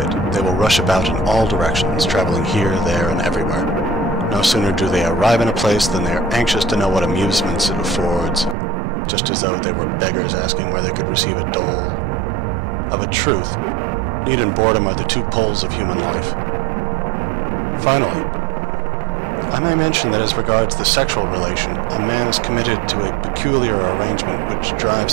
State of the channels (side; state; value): left; drops out; at 8.6 s